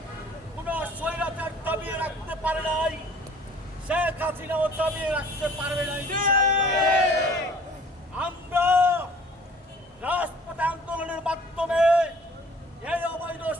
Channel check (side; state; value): both; normal; correlation 0.52